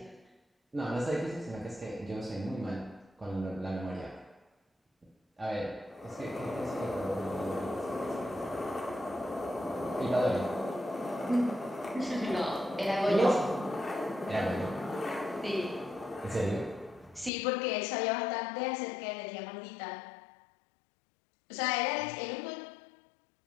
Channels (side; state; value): right; drops out; at 17.3 s